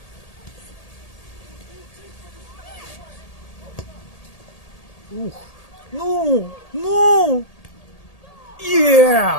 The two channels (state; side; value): late; right; 1.8 ms